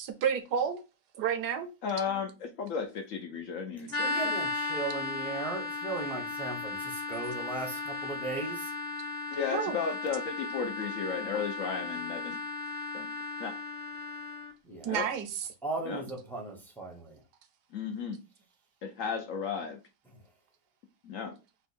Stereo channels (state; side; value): normal; both; correlation -0.06